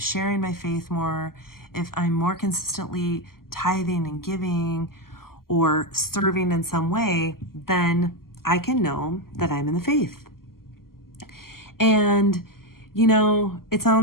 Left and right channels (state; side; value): late; right; 0.92 ms